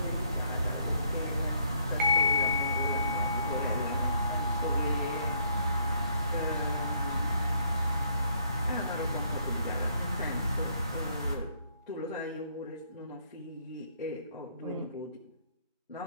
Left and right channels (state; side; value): inverted; both; correlation -0.68